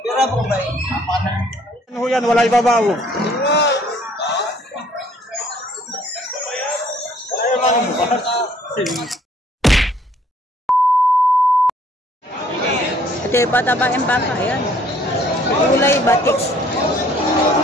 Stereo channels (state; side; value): normal; both; correlation 0.60